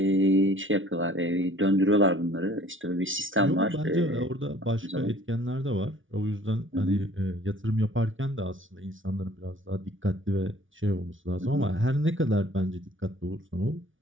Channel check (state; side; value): late; left; 0.57 ms